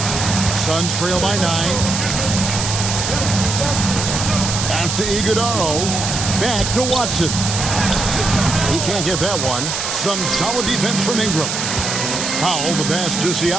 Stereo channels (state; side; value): noise; right; hiss, 3 dB below the sound